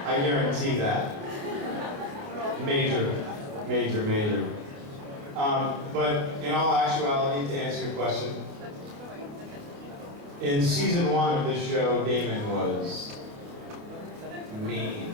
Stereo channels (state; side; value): late; left; 28 ms